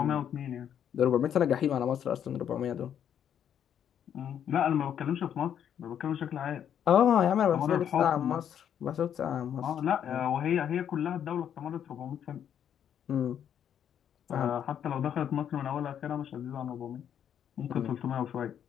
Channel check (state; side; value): quieter; right; 9.2 dB